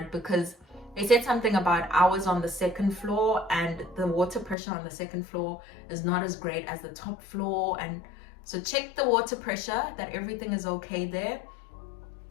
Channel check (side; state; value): right; drops out; at 4.5 s